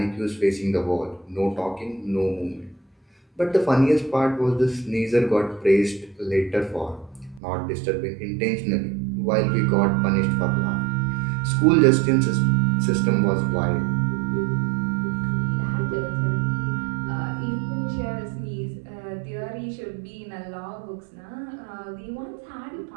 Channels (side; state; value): left; drops out; at 7.4 s